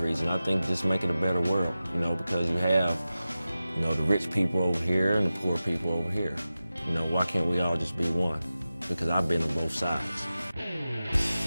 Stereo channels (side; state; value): both; inverted; correlation -0.94